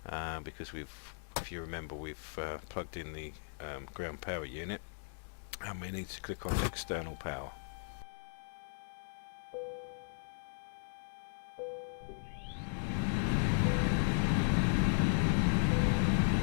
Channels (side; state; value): right; silent; digital silence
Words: because if you remember, we've plugged in the ground power unit, and we need to click on external power.